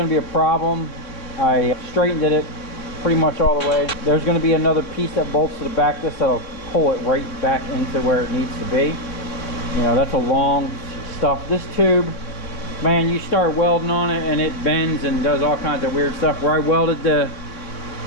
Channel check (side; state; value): right; late; 3.5 ms